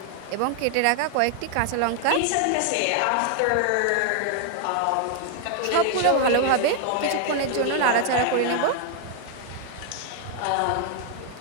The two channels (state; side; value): different; both; correlation 0.00